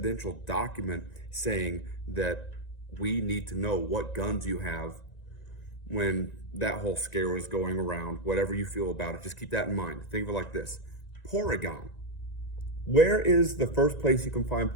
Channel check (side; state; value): right; late; 1.9 ms